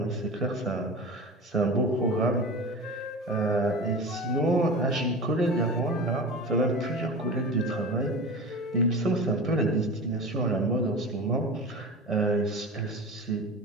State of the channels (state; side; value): normal; both; correlation 0.31